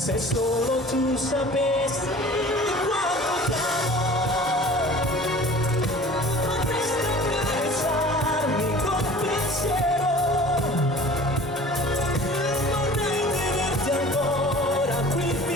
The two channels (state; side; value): normal; both; correlation 0.44